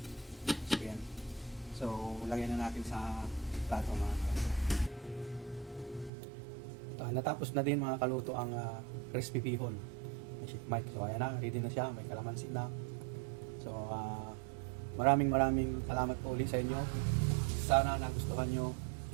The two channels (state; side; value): drops out; left; at 6.1 s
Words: So yan. So lagyan na natin sa plato mga kaluto. Natapos na din mga kaluto ang crispy bihon. May sheet mic. So ayan na, ready na siya. May kalamansi na. So maraming salamat po ulit sa inyo. Sana nagustuhan nyo